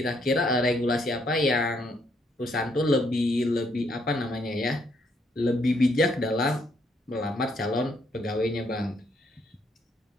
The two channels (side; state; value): both; normal; correlation 0.72